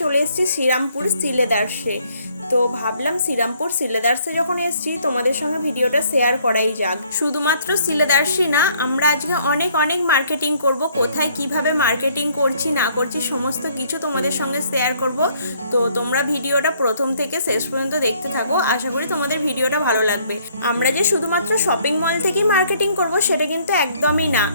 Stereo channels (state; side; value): inverted; both; correlation -0.64